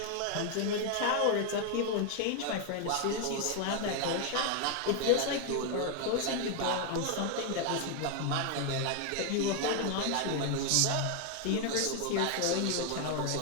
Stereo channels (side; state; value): both; different; correlation 0.01